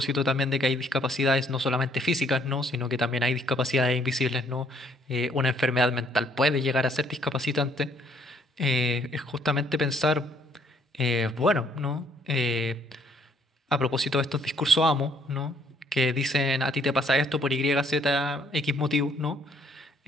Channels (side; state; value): both; normal; correlation 0.65